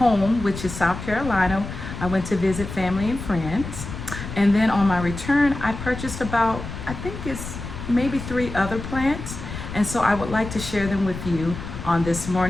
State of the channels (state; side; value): noise; left; rumble, 9 dB below the sound